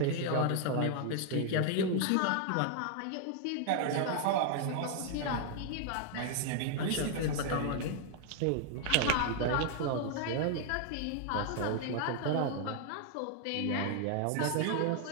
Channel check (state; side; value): different; both; correlation 0.00